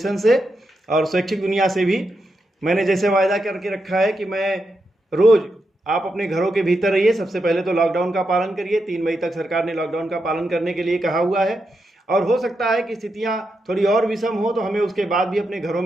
से और शैक्षिक दुनिया से भी। मैंने जैसे वायदा करके रखा है कि मैं रोज़ आप अपने घरों के भीतर रहिए। सबसे पहले तो लॉकडाउन का पालन करिए। 3 मई तक सरकार ने लॉकडाउन का पालन करने के लिए कहा हुआ है और हो सकता है कि स्थितियां थोड़ी और विषम हो तो हमें उसके बाद भी अपने घरों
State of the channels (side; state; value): both; normal; correlation 0.85